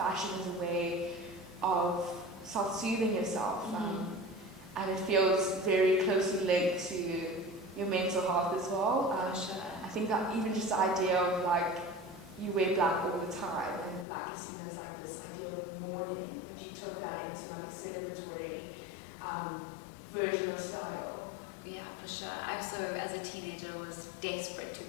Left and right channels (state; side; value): drops out; right; at 14.1 s